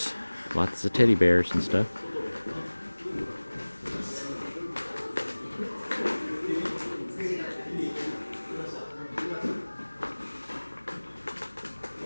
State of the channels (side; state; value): both; inverted; correlation -1.00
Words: lots of teddy bears and stuff.